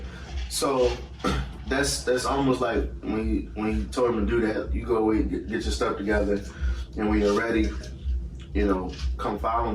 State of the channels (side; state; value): both; identical; correlation 1.00